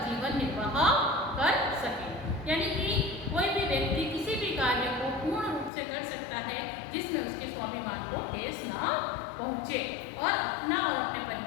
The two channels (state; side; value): drops out; right; at 5.7 s